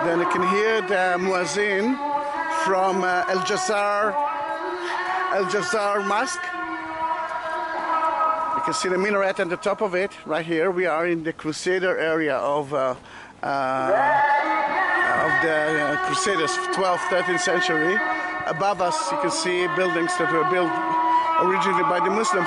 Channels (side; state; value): both; identical; correlation 1.00